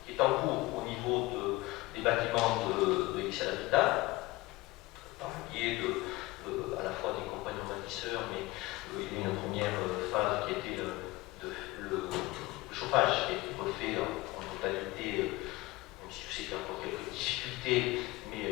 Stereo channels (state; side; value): quieter; right; 20.4 dB